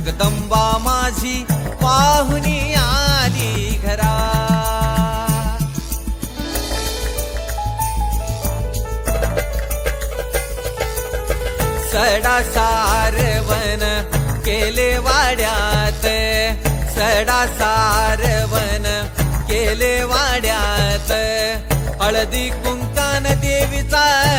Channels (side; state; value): both; identical; correlation 1.00